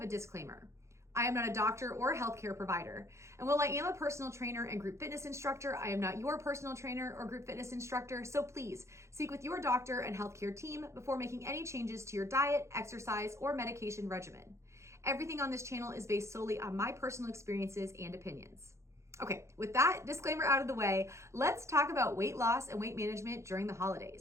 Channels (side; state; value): left; late; 0.14 ms